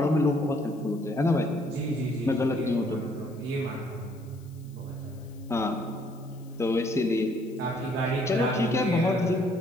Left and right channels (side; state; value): left; noise; hiss, 28 dB below the sound